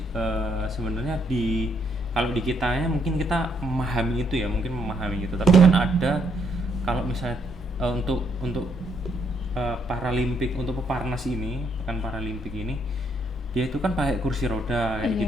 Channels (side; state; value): both; normal; correlation 0.72